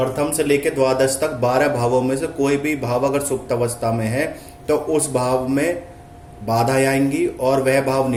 से लेकर द्वादश तक 12 भावों में से कोई भी भाव अगर सुप्त अवस्था में है तो उस भाव में बाधा आएंगी और वह भाव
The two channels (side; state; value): both; identical; correlation 1.00